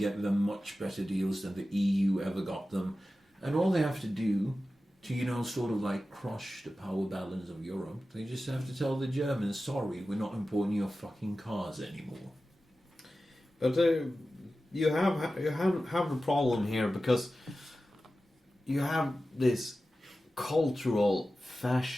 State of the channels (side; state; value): both; normal; correlation 0.94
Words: them much better deals than the EU ever got them. And all they have to do to, sort of like crush the power balance of Europe, they just have to tell the Germans, sorry, we're not importing your fucking cars anymore. But you have a problem here because you have these cultural